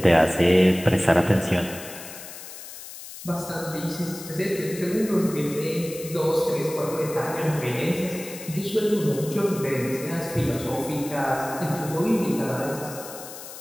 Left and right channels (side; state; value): left; noise; hiss, 13 dB below the sound